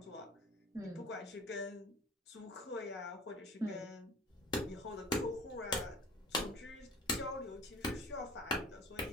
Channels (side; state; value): both; normal; correlation 0.44